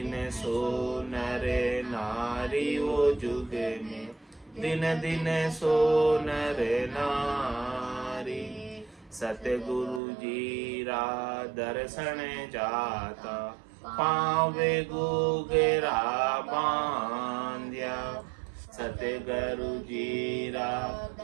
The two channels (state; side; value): drops out; left; at 10.0 s